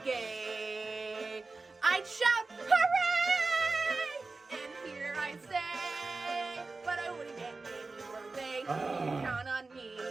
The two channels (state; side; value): quieter; left; 3.7 dB